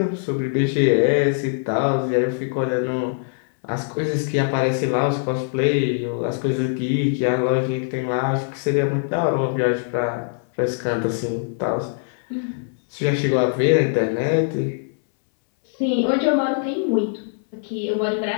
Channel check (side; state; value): right; silent; 64 dB below the other